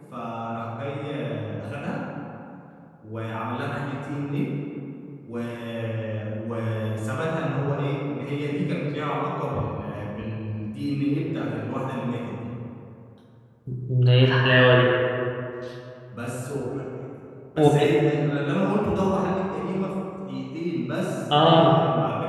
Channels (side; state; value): both; identical; correlation 1.00